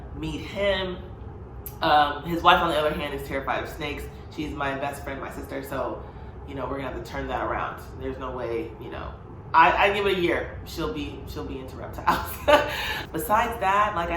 meet him. His wife, on the other hand, is terrified of snakes. She's my best friend, my sister, so, we're gonna have to turn that around. There's no way, I give it a year, she'll be into reptiles. Besides that, like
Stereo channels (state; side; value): identical; both; correlation 1.00